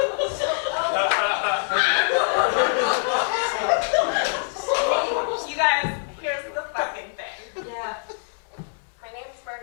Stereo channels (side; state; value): right; silent; 62 dB below the other